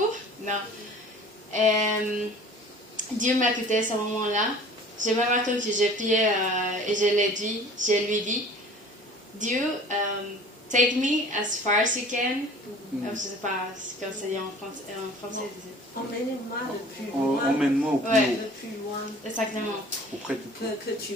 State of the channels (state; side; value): normal; both; correlation 0.46